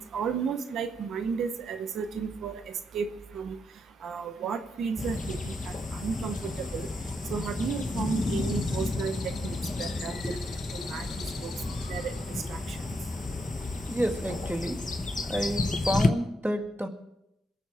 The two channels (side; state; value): both; normal; correlation 0.80